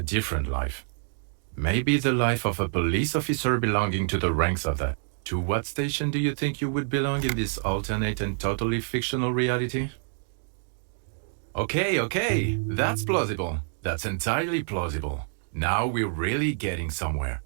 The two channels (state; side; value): silent; left; digital silence